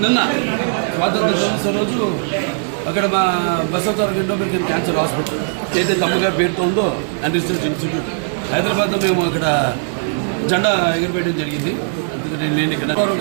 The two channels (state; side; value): silent; left; 67 dB below the other